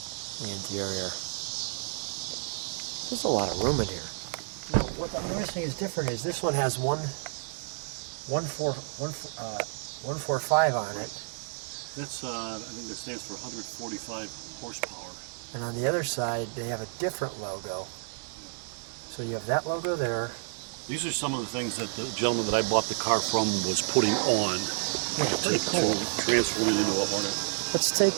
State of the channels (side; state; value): left; silent; 58 dB below the other